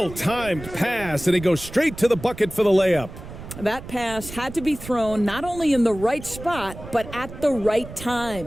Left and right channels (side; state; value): right; noise; rumble, 13 dB below the sound